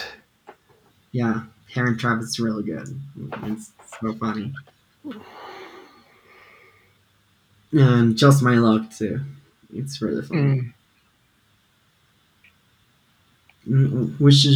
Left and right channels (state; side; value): identical; both; correlation 1.00